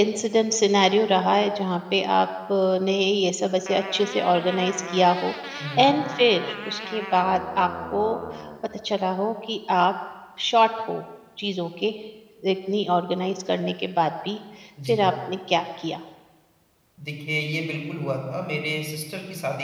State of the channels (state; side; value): identical; both; correlation 1.00